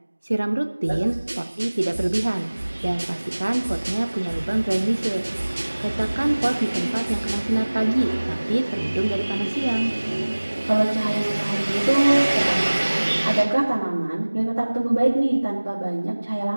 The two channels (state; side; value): inverted; both; correlation -1.00